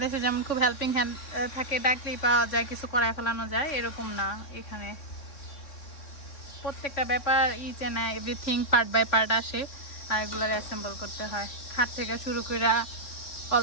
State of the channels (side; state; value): right; late; 3.6 ms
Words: যেমন খুব হেল্পিং হ্যান্ড থাকে, ডাকলেই পাওয়া যায়, কিছু করায় ফেলানো যায়, এরকম না। এখানে প্রত্যেকটা ব্যাপার each and everything part by part আসে, আর এগুলোর অ্যাসেম্বল করতে হয়। খাট থেকে শুরু করে অল